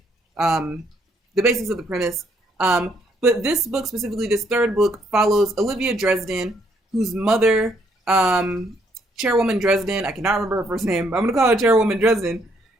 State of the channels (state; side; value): normal; both; correlation 0.70